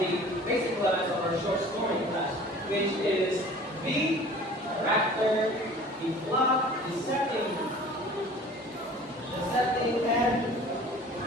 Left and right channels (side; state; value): both; normal; correlation 0.46